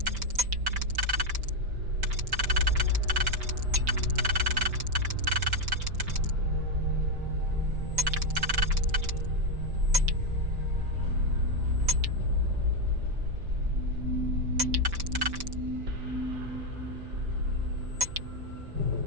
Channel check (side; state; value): left; late; 5.1 ms